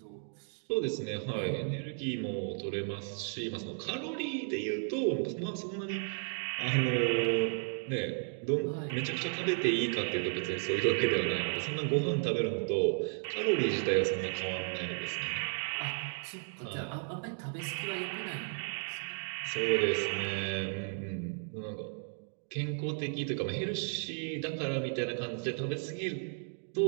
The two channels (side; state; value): left; silent; 55 dB below the other